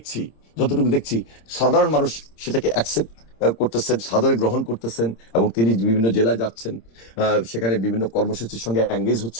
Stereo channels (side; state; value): right; late; 26 ms